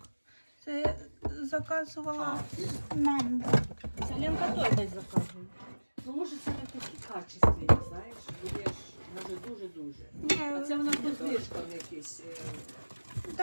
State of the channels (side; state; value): both; inverted; correlation -1.00